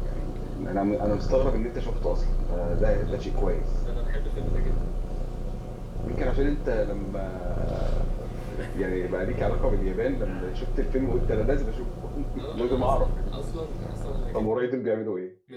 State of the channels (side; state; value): both; identical; correlation 1.00